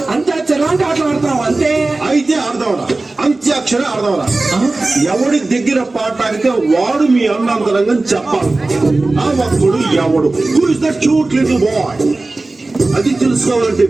అంత్యాక్షరి లాంటి ఆటలు ఆడతాం అంతే. అయితే ఆడదాంరా అంత్యాక్షరి ఆడదాంరా. ఎవడి దగ్గర పాట ఆడితే వాడు మీ అన్నంతరంగా చెప్పాలి. ఆ ఒక్కడు ఎవడు who is that cute little boy అది తెలుసుకోవాలంటే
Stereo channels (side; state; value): left; quieter; 3.2 dB